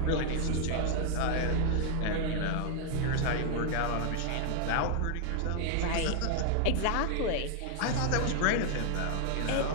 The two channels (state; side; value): different; both; correlation 0.00